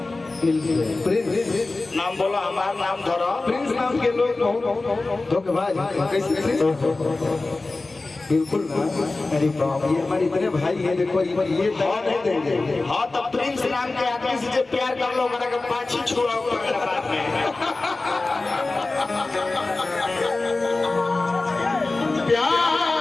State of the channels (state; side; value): quieter; right; 3.3 dB